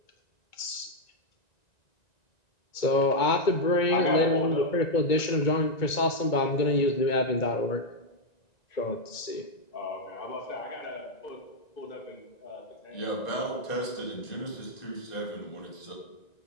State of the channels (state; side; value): late; right; 1.9 ms